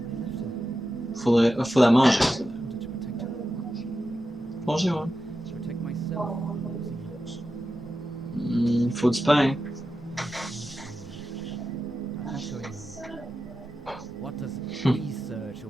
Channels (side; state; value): both; normal; correlation 0.91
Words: Faut la manger, ça. Congé, ouais. Faut du pain. What does research